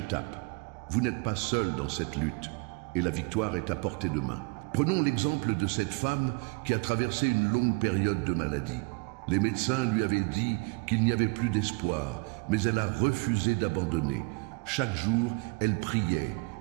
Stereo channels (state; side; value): quieter; left; 31.0 dB